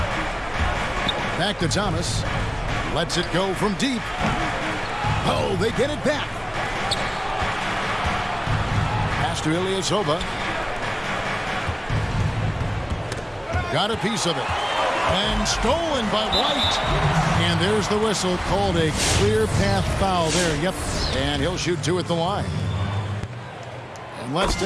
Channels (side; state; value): both; identical; correlation 1.00